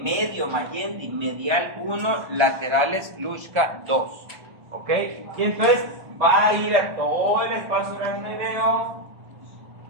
medio, Mayendi, medial 1, laterales Luschka 2. ¿Ok? Y entonces va a ir a todo el espacio aracnoideo.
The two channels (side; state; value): left; late; 1.3 ms